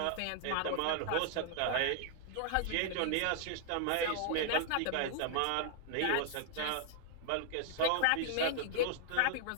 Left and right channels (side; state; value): both; different; correlation -0.01